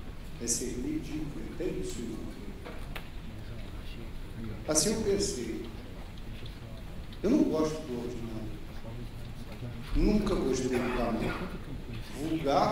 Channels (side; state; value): both; identical; correlation 1.00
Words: é ser ridículo, entende isso? Assim eu pensei, eu não gosto do ordinário, nunca gostei do banal,